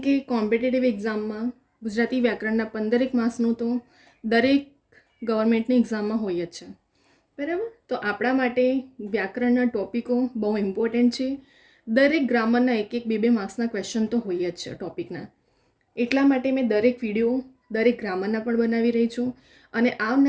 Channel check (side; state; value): both; identical; correlation 1.00